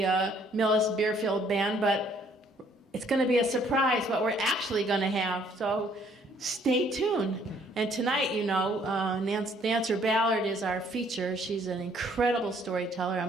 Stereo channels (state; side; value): normal; both; correlation 0.63